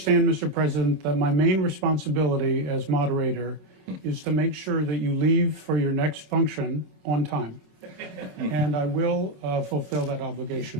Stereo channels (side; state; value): left; late; 27 ms